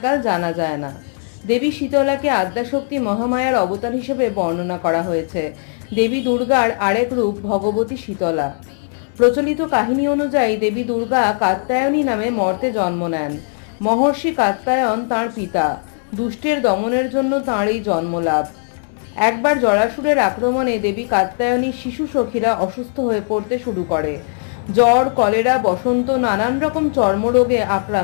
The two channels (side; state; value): right; silent; 67 dB below the other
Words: জানা যায় না। দেবী শীতলাকে আদ্যাশক্তি মহামায়ার অবতার হিসেবে বর্ণনা করা হয়েছে। দেবী দুর্গার আরেক রূপ ভগবতী শীতলা। প্রচলিত কাহিনী অনুযায়ী দেবী দুর্গা কাত্যায়নী নামে মর্তে জন্ম নেন। মহর্ষি কাত্যায়ন তাঁর পিতা। দুষ্টের দমনের জন্য তাঁর এই জন্মলাভ। একবার জরাসুরের আক্রমণে দেবী কাত্যায়নীর শিশু সখীরা অসুস্থ হয়ে পড়তে শুরু করে। জ্বর, কলেরা, বসন্ত, নানান রকম চর্মরোগে